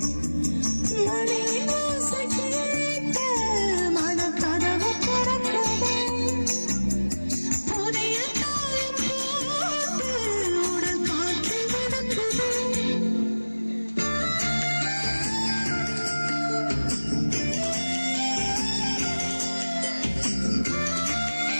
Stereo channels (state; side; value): inverted; both; correlation -1.00